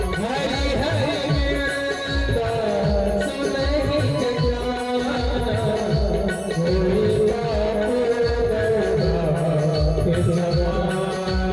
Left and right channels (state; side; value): identical; both; correlation 1.00